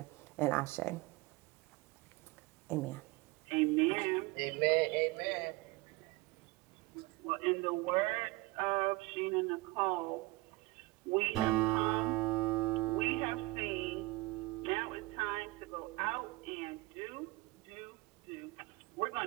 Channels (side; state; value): left; quieter; 21.9 dB